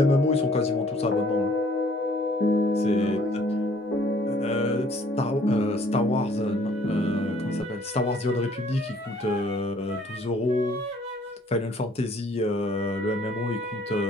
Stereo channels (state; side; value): normal; both; correlation 0.59